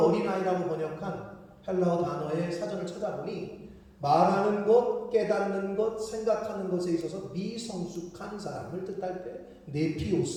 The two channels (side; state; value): both; identical; correlation 1.00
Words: 어린아이라고 번역한 헬라어 단어의 사전을 찾아보니 말하는 것, 깨닫는 것, 생각하는 것에 있어서 미성숙한 사람을 뜻할 때